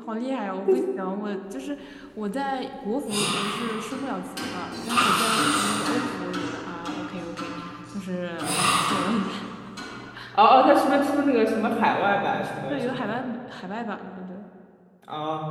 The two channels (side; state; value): both; identical; correlation 1.00